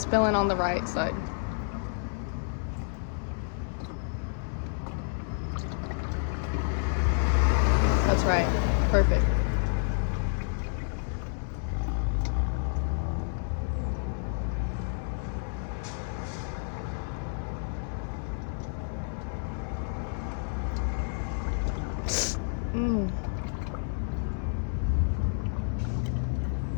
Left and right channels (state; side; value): silent; right; 58 dB below the other